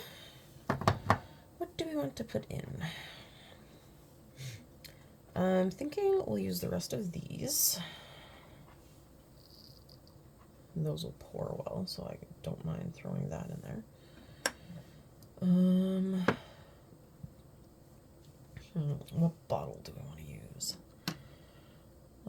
what do we want to put in? I'm thinking we'll use the rest of these. Those will pour well, so I don't mind throwing that in there. What bottle do I want to use?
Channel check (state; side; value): identical; both; correlation 1.00